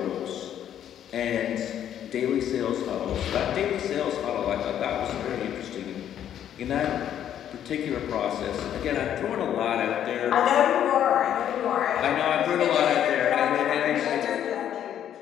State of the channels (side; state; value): right; quieter; 10.2 dB